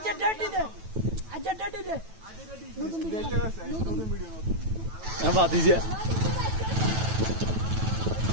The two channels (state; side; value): late; left; 9.1 ms